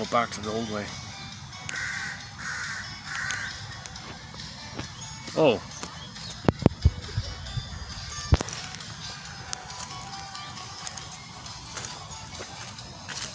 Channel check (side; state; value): both; identical; correlation 1.00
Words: back to the old way? Oh.